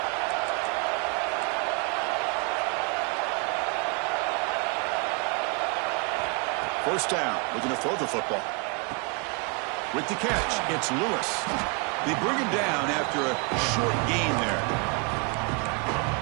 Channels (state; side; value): quieter; left; 34.3 dB